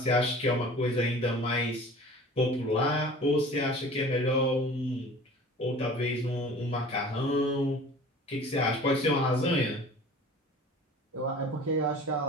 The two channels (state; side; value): normal; both; correlation 0.43